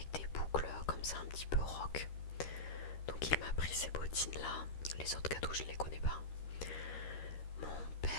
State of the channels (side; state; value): right; late; 13 ms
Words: des boucles comme ça un petit peu rock. Donc il m'a pris ces bottines là. Les autres cadeaux je ne les connais pas. Mon